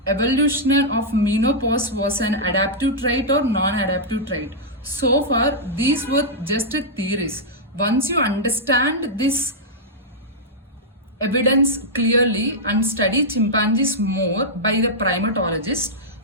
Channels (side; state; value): both; normal; correlation -0.08